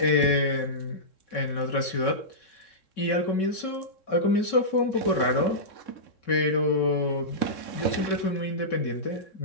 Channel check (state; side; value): late; right; 3.7 ms